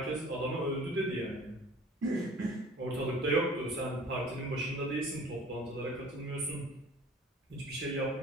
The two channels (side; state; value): both; normal; correlation 0.47